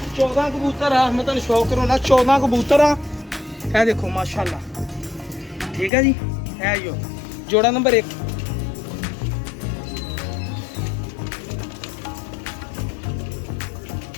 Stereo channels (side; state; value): right; drops out; at 5.9 s